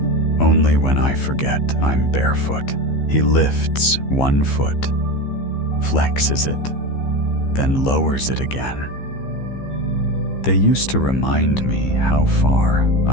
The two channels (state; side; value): late; right; 15 ms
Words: Only when I forget I'm barefoot. He lifts one foot, flexes it, then lowers it again. They used to remind me how far